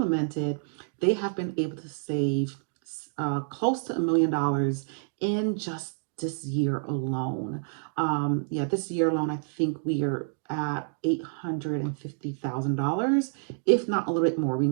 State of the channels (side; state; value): left; silent; digital silence